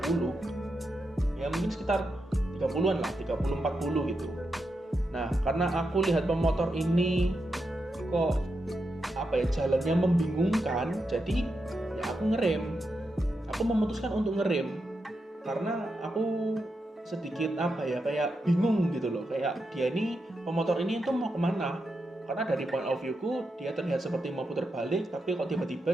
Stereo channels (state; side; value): normal; both; correlation 0.86